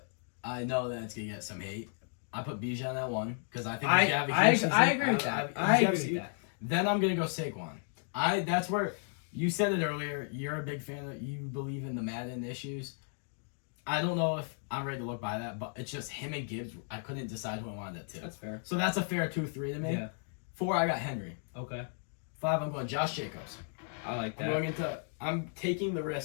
I know that it's going to get some hate. I put Bijan at 1 because I think he's going to have a huge season. I agree with that. I agree with that. Then I'm going to go Saquon. That's where you said it earlier. You're a big fan of, you believe in the Madden issues. I don't know if I'm ready to look by that, but it's just him and Gibbs. I couldn't decide who I wanted at 2. That's fair. So that's a fair 2-3 to me. Yeah. 4, I got Henry. Okay. 5, I'm going Josh Jacobs. I like that. I'm taking the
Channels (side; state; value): right; silent; 55 dB below the other